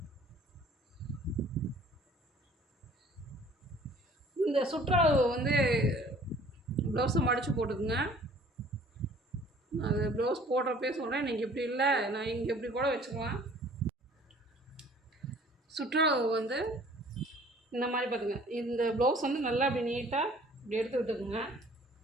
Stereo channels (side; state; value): both; normal; correlation 0.53